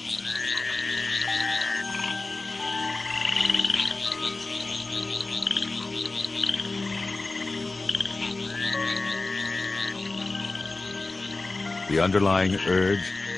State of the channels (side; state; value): right; quieter; 3.4 dB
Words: The underlying urge